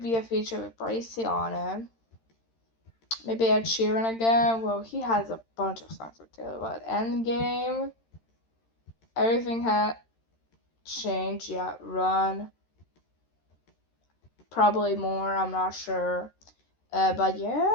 be a feature with Gracie on it. Maybe Ed Sheeran again. Well, he has a bunch of songs with Taylor, but Endgame, everything had changed. Yeah, Run, probably more. I'm not sure. But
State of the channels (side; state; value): right; late; 13 ms